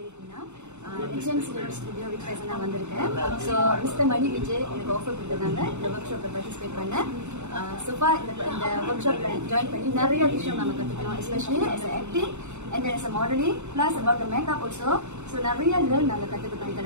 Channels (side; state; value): left; late; 0.83 ms